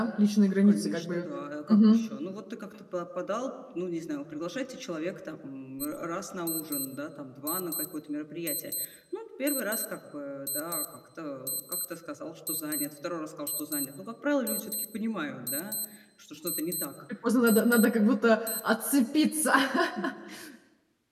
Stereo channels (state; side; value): identical; both; correlation 1.00